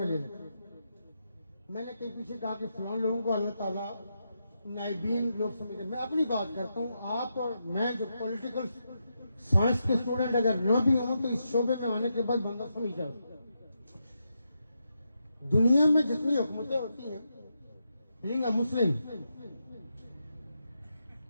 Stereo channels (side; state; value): both; inverted; correlation -0.84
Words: ले लेते। मैंने कहीं पीछे कहा कि फलां लोगों को अल्लाह ताला नाइबीन लोग समझते। मैं अपनी बात करता हूँ, आप और मैं जो पॉलिटिकल साइंस के स्टूडेंट अगर न भी हों तो इस शोबे में आने के बाद बंदा समझ जाता। दुनिया में जितनी हुकूमतें होती हैं, बीइंग अ मुस्लिम,